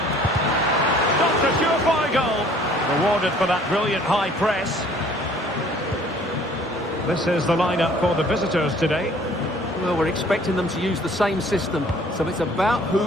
Stopped a surefire goal. Rewarded for that brilliant high press. This is the lineup for the visitors today. Well, we're expecting them to use the same system, so it's about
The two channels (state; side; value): normal; both; correlation 0.55